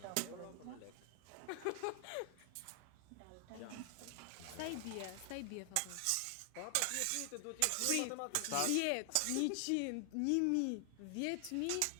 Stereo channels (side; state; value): both; different; correlation 0.00